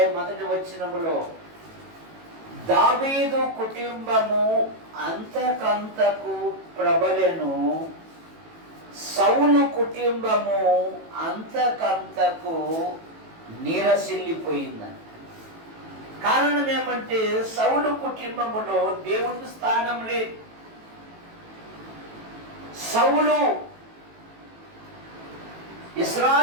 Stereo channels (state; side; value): late; left; 18 ms